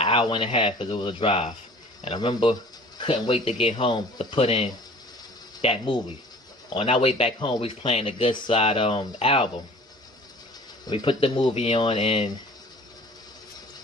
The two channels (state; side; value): normal; both; correlation 0.47